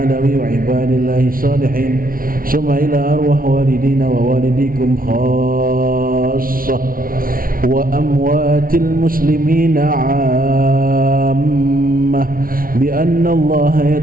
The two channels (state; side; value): late; left; 0.42 ms